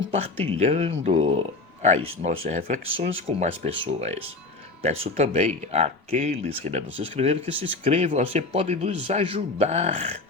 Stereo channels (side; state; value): right; quieter; 3.4 dB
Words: as nossas reflexões com mais pessoas. Peço também àqueles que ainda não se inscreveram que se inscrevam, você pode nos ajudar